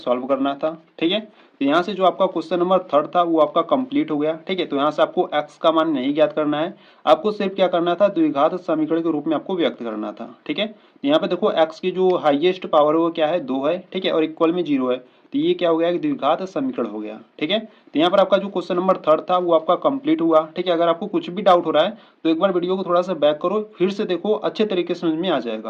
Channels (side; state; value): both; identical; correlation 1.00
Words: करना था। ठीक है, तो यहाँ से जो आपका क्वेश्चन नंबर 3 था वो आपका कंप्लीट हो गया। ठीक है, तो यहाँ से आपको x का मान नहीं ज्ञात करना है, आपको सिर्फ क्या करना था, द्विघात समीकरण के रूप में आपको व्यक्त करना था। ठीक है, तो यहाँ पे देखो x की जो हाईएस्ट पावर है वो क्या है, 2 है। ठीक है, और इक्वल में 0 है, तो ये क्या हो गया, द्विघात समीकरण हो गया। ठीक है, तो यहाँ पर आपका जो क्वेश्चन नंबर 3 था वो आपका कंप्लीट हुआ। ठीक है, अगर आपको कुछ भी डाउट हो रहा है तो एक बार वीडियो को थोड़ा सा बैक करो, फिर से देखो, अच्छे तरीके से समझ में आ